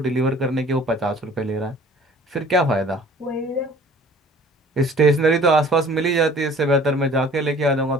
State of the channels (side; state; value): both; normal; correlation 0.50